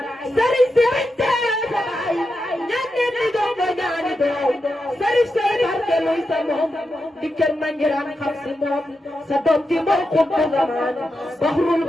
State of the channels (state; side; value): normal; both; correlation 0.88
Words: sëriñ si bañ tee tabaay ñaan leen di doom ba ñaani doom sëriñ say barke luy sa moom dikkal ma njiraan xam si moom sa doom ji mooy xutbu zamaan baxrul